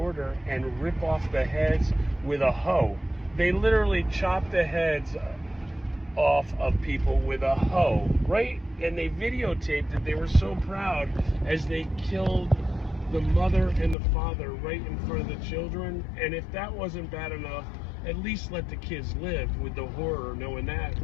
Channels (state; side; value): drops out; right; at 14.0 s